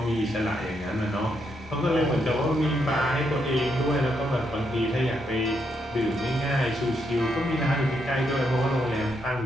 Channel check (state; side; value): normal; both; correlation 0.78